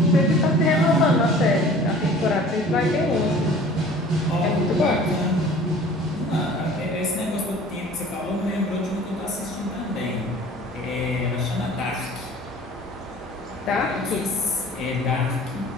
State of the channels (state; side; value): normal; both; correlation 0.46